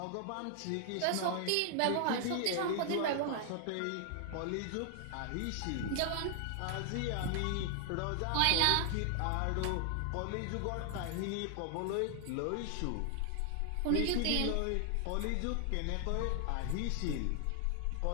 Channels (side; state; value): both; different; correlation 0.00